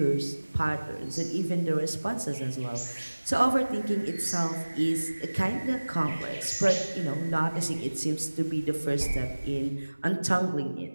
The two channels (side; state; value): both; inverted; correlation -1.00